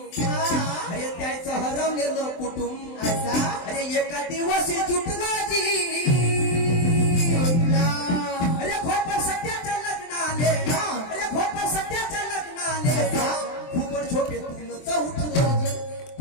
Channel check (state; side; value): late; right; 23 ms